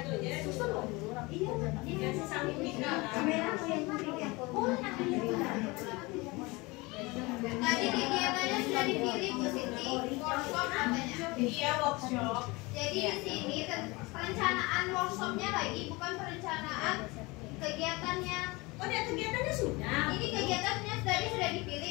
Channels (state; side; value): quieter; right; 24.1 dB